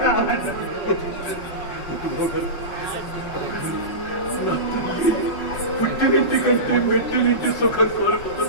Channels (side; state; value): right; late; 5.5 ms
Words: పుట్టినింటి కంటే మెట్టినింటి సుఖం